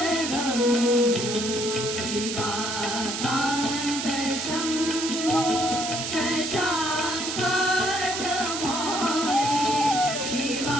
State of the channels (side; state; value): right; noise; hiss, 4 dB below the sound